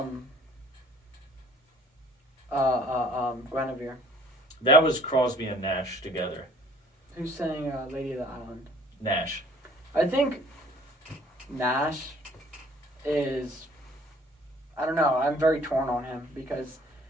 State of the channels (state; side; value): normal; both; correlation 0.56